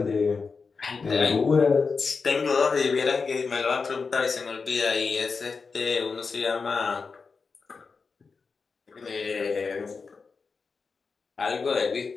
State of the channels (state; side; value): quieter; right; 4.8 dB